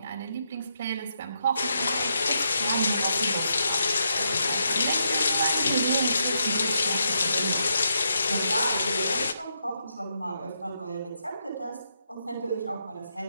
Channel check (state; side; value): inverted; both; correlation -0.80